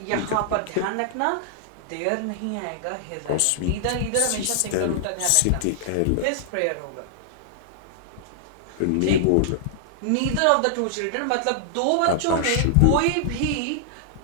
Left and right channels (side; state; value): both; different; correlation -0.01